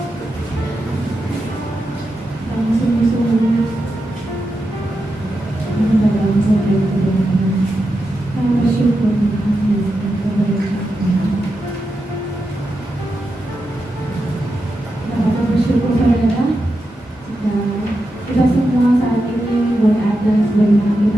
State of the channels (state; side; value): normal; both; correlation 0.88